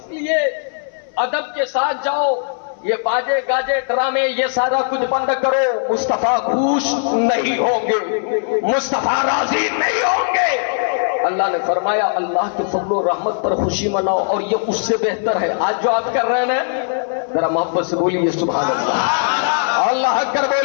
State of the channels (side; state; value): right; silent; 66 dB below the other